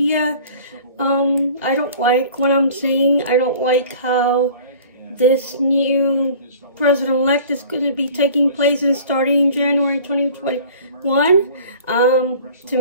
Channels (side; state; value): both; inverted; correlation -0.46